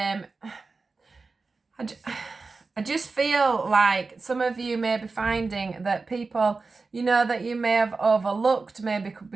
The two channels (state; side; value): quieter; left; 4.1 dB